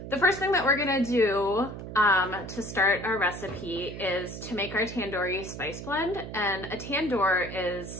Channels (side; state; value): right; noise; hum, 10 dB below the sound